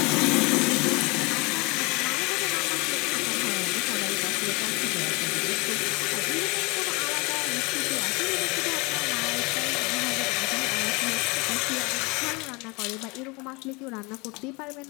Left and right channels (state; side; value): quieter; right; 27.2 dB